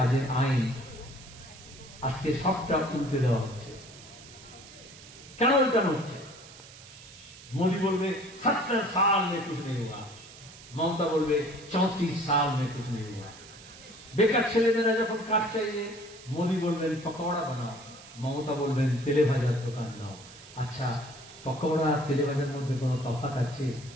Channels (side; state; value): right; noise; hiss, 19 dB below the sound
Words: আইন। আজকে সবটা উল্টে দেওয়া হচ্ছে। কেন উল্টানো হচ্ছে? মোদী বলবে 70 साल में कुछ नहीं हुआ, মমতা বলবে 34 साल में कुछ नहीं हुआ। বেকার ছেলেমেয়েরা যখন কাজ চাইবে, মোদী বলবেন পকোড়া বানাও, মমতা বলবেন তেলে ভাজার দোকান দাও। আচ্ছা, পকোড়া আর তেলে ভাজার মধ্যে কোনো তফাৎ আছে?